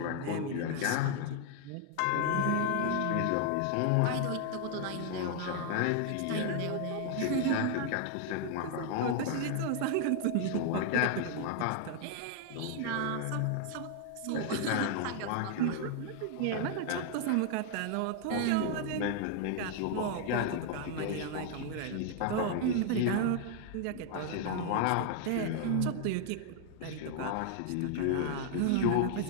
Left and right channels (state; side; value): different; both; correlation 0.00